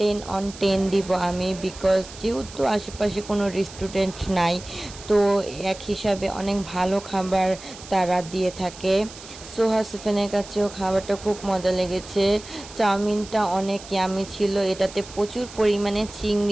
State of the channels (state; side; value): noise; right; hiss, 16 dB below the sound